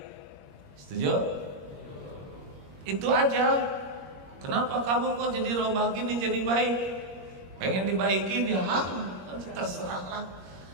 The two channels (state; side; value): late; left; 21 ms